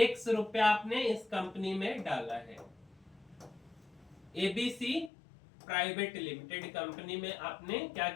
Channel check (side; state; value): right; drops out; at 5.1 s